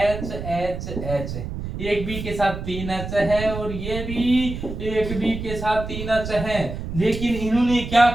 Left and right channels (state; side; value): noise; right; rumble, 7 dB below the sound